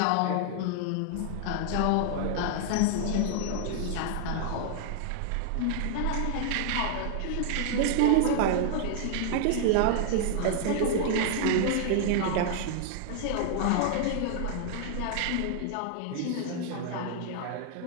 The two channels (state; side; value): different; both; correlation 0.00